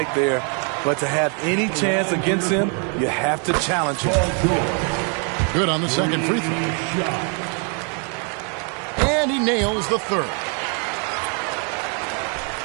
there. But to have any chance against him, you have to challenge him. Good on the second free throw. And he nails the 3rd.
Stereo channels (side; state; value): left; quieter; 38.8 dB